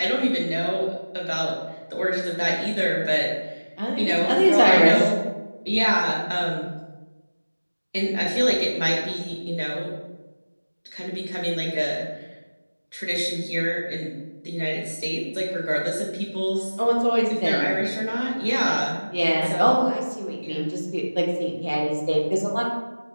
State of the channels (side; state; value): both; inverted; correlation -1.00